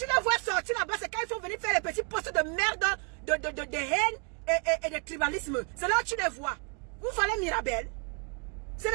les vois sortir là-bas, c'est quand il faut venir faire les petits postes de merde, de haine et de tribalisme. C'est là où tu les vois. Vous voulez Mirabel? C'est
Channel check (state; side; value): quieter; left; 37.2 dB